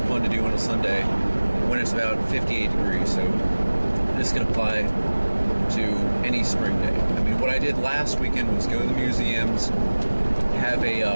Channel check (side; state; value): both; inverted; correlation -1.00